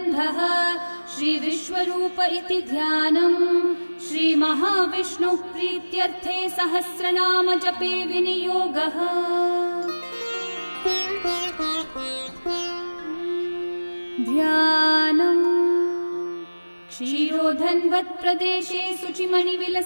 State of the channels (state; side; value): inverted; both; correlation -1.00